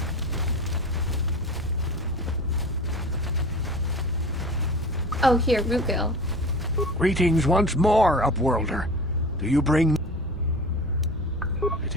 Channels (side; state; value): both; normal; correlation 0.36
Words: Oh, here, Rootgill. Greetings once more, Upworlder. Do you bring...